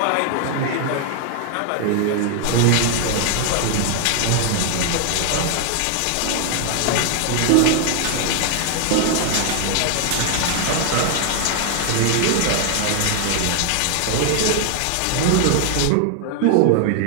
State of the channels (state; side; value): different; both; correlation 0.00